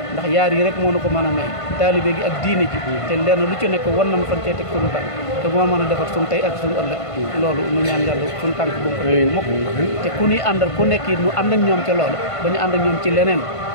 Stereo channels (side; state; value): right; late; 1.5 ms